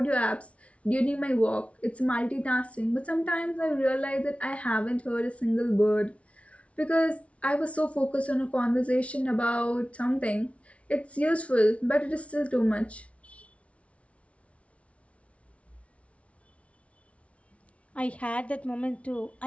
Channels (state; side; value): late; right; 0.063 ms